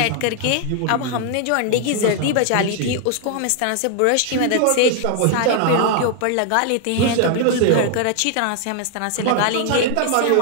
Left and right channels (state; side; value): different; both; correlation 0.00